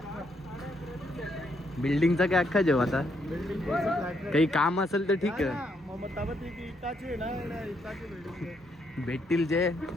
बिल्डिंगचा काय अख्खा जेव्हा आता बिल्डिंग काही काम असेल तर ठीक आहे. मग ताबत इटाची ना इटाची बिल्डिंग भेटतील जे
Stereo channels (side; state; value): both; normal; correlation 0.75